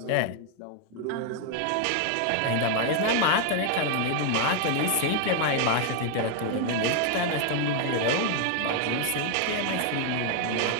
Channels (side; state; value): both; different; correlation 0.00